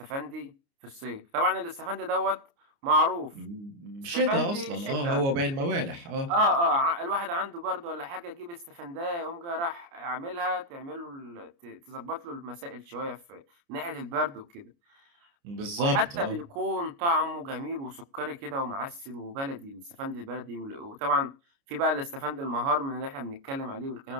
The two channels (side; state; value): left; late; 29 ms